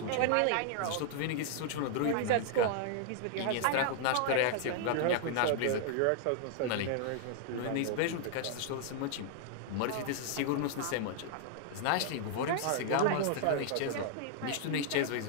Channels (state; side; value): different; both; correlation -0.01